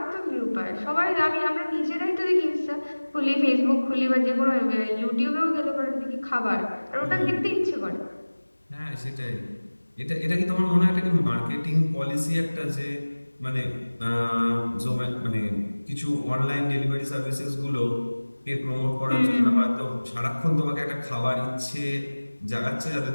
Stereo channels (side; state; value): both; inverted; correlation -1.00